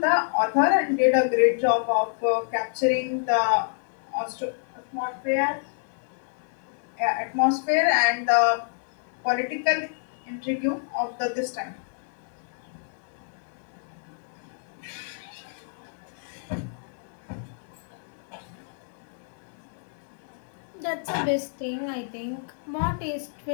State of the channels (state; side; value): silent; right; digital silence